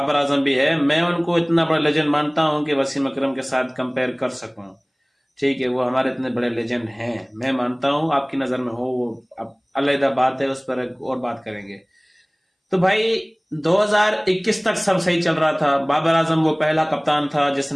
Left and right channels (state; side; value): identical; both; correlation 1.00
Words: आजम भी है। मैं उनको इतना बड़ा लेजेंड मानता हूं कि वसीम अकरम के साथ कंपेयर कर सकूं। ठीक है, वो हमारे इतने बड़े लेजेंड हैं, मैं मानता हूं। आपकी नजर में हो वो अब अलग बात है, उस पर एक और बात करेंगे। तो भाई 2021 तक सब सही चल रहा था। बाबर आजम वो पहला कप्तान था